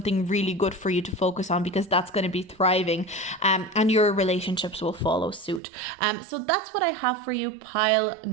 really good for you to focus on, because that's going to be thriving, and your relationships will follow suit. So that's what I have for you, pile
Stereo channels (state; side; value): drops out; left; at 5.6 s